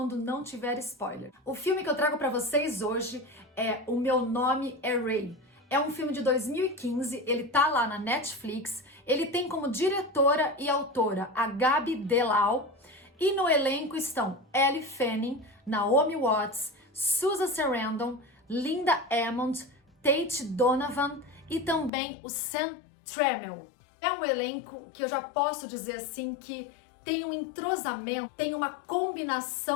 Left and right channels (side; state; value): right; drops out; at 21.9 s